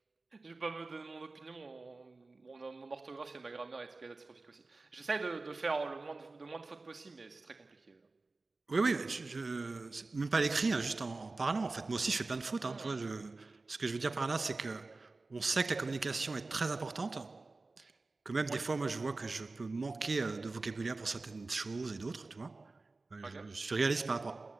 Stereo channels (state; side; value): quieter; left; 3.5 dB